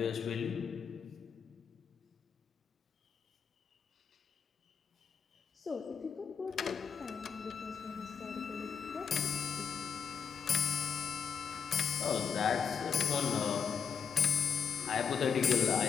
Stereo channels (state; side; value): quieter; right; 6.9 dB